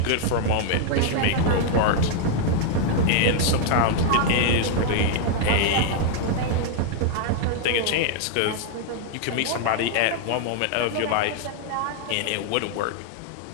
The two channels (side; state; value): both; different; correlation 0.00